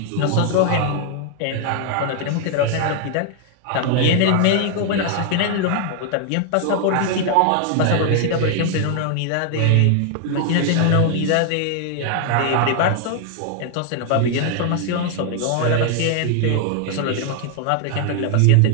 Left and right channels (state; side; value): different; both; correlation 0.00